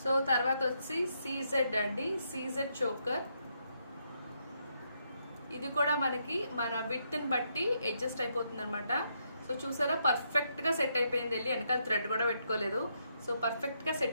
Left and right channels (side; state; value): both; inverted; correlation -0.78